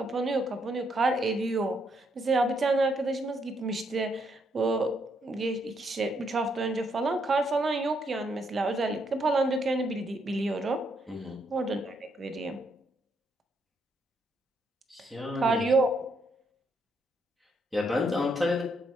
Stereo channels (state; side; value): normal; both; correlation 0.75